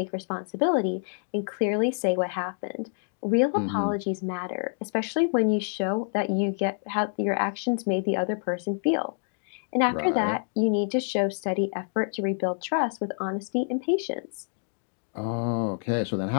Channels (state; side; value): silent; right; 60 dB below the other